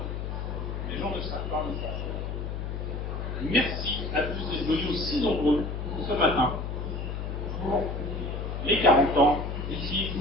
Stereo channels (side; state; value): left; noise; hum, 4 dB below the sound